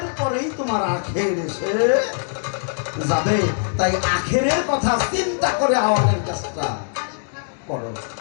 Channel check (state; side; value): silent; right; digital silence